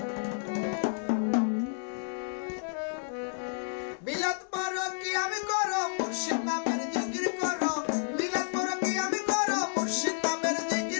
মিলাদ পড়ো কিয়াম করো মুর্শিদ নামের জিকির করো মিলাদ পড়ো কিয়াম করো মুর্শিদ নামের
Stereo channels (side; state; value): right; silent; digital silence